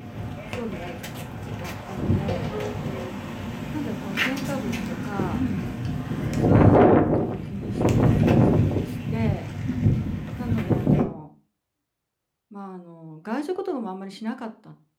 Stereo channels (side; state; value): both; identical; correlation 1.00